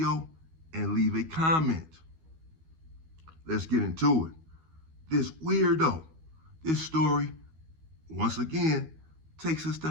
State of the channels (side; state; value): left; late; 12 ms